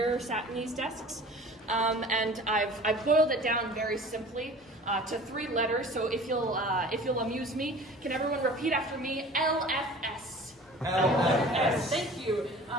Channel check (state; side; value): normal; both; correlation 0.43